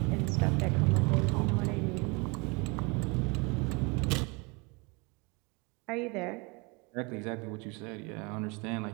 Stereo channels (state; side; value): quieter; left; 28.9 dB